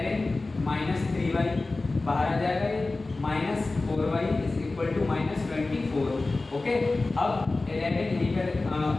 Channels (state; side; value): quieter; right; 3.3 dB